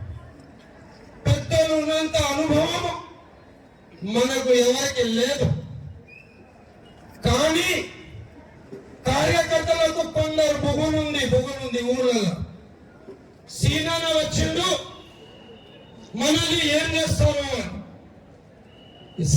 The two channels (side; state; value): both; identical; correlation 1.00